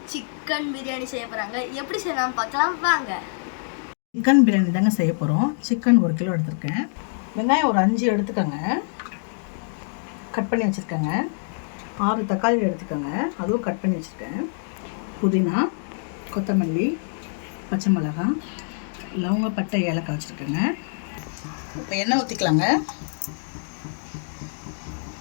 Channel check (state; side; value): silent; right; digital silence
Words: சிக்கன் பிரியாணி செய்ய போகிறாங்க. எப்படி செய்யலாம் பார்க்கலாம் வாங்க. சிக்கன் பிரியாணி தாங்க செய்ய போகிறோம். சிக்கன் 1 கிலோ எடுத்திருக்கேன். வெங்காயம் ஒரு 5 எடுத்துக்கோங்க, கட் பண்ணி வச்சுருக்கேங்க. 6 தக்காளி எடுத்துக்கோங்க, அதுவும் கட் பண்ணி வச்சுருக்கேன். புதினா, கொத்தமல்லி, பச்சை மிளகாய், லவங்க, பட்டை, ஏலக்காய் வச்சுருக்கேங்க. இப்போ எண்ணெய் ஊற்றிக்கலாங்க.